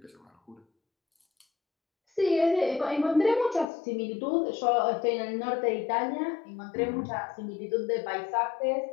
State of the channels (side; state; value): right; drops out; at 3.7 s